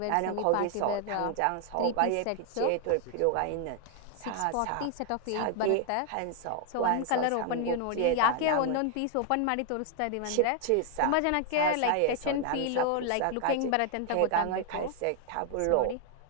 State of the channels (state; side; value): different; both; correlation 0.00